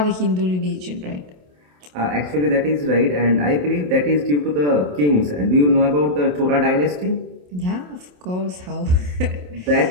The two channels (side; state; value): left; late; 27 ms